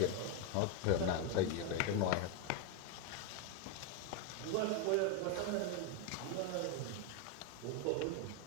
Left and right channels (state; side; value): different; both; correlation 0.02